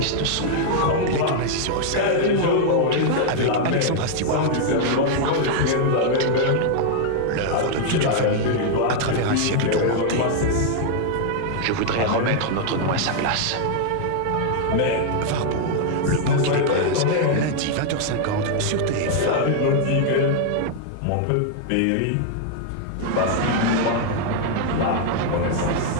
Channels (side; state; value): both; different; correlation 0.00